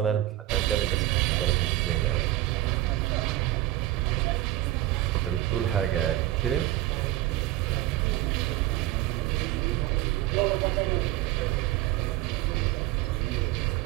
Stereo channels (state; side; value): quieter; left; 15.4 dB